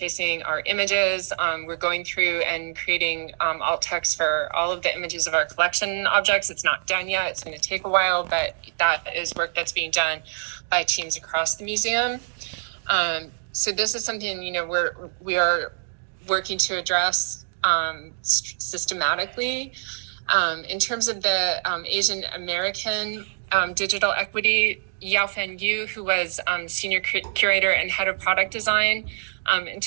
our images. We're going through and creating alt text for all of the images of our collection objects. It's not done yet. It's going to take a while, but that is work that's being done by teams across the museum. So this is something, we are working to address systematically. In terms of the Asian American digital equity, Yaofan Yu, who was senior curator and head of product design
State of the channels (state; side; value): silent; left; digital silence